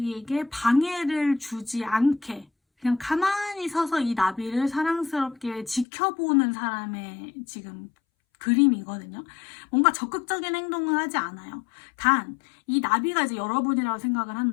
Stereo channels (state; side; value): drops out; right; at 5.9 s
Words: 방해를 주지 않게 그냥 가만히 서서 이 나비를 사랑스럽게 지켜보는 사람의 지금 그림이거든요. 뭔가 적극적인 행동을 하지 않아요. 단, 이 나비가 이제 여러분이라고 생각을